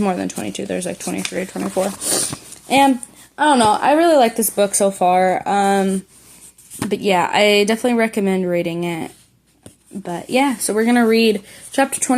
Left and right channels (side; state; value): both; identical; correlation 1.00